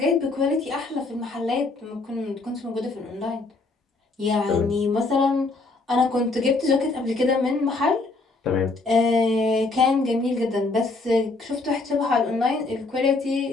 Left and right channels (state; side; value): quieter; right; 3.5 dB